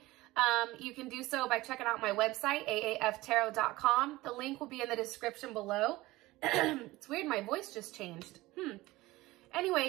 You can do so by checking out my website, aaftarot.com. The link will be in the description below. It's weird, my voice just changed.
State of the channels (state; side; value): quieter; left; 19.1 dB